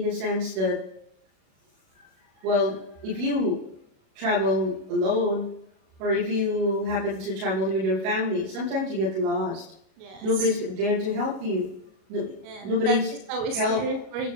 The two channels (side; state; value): left; late; 37 ms